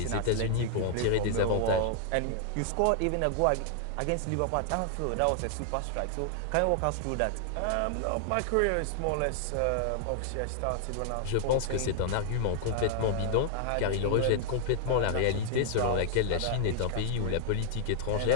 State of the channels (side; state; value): both; different; correlation 0.00